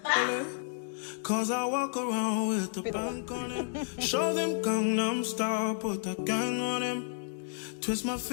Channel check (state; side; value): silent; right; digital silence